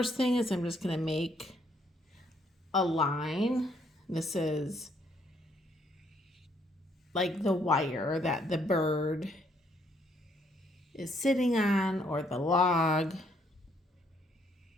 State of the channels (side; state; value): both; normal; correlation 0.69